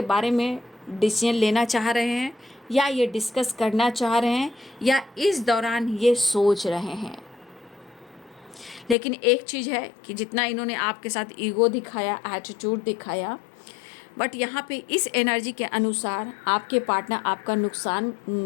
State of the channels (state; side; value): drops out; right; at 9.0 s